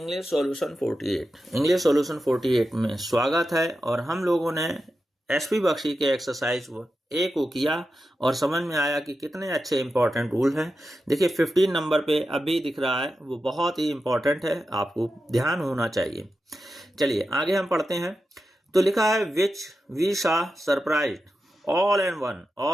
solution 48। English solution 48 में स्वागत है। और हम लोगों ने एसपी बख्शी के एक्सरसाइज ए को किया और समझ में आया कि कितने अच्छे इंपॉर्टेंट रूल हैं। देखिए 15 नंबर पे अभी दिख रहा है, वो बहुत ही इंपॉर्टेंट है, आपको ध्यान होना चाहिए। चलिए आगे हम पढ़ते हैं। तो लिखा है विच वी शा surprise all and one.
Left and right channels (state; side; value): normal; both; correlation 0.90